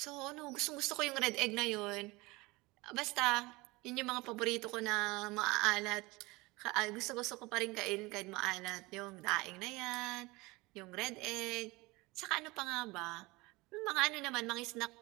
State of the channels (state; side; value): quieter; left; 23.0 dB